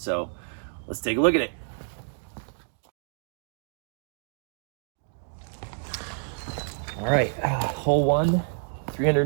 let's take a look at it. All right, hole one,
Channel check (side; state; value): left; silent; 59 dB below the other